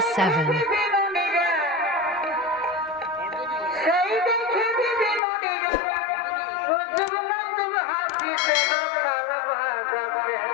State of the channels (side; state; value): right; drops out; at 5.2 s